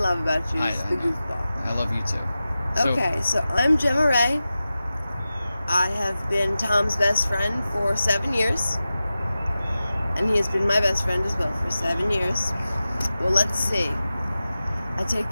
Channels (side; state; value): both; inverted; correlation -0.94